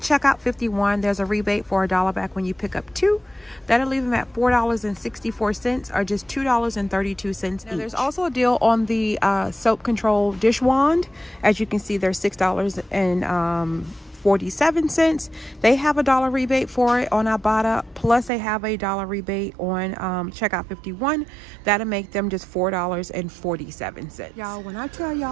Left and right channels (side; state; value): left; drops out; at 18.3 s